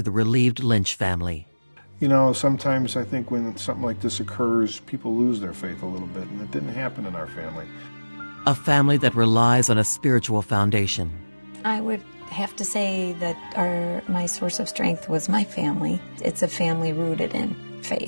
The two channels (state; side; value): inverted; both; correlation -1.00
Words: the relieved Lynch family. Sometimes I think when something like this occurs, people lose their faith a little bit, and it didn't happen in our family. A family that relies on a spiritual foundation. I would have to say that my source of strength was my family. It's a family rooted in